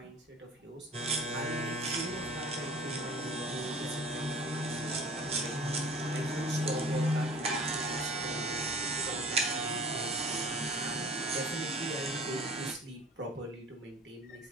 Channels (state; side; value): normal; both; correlation 0.46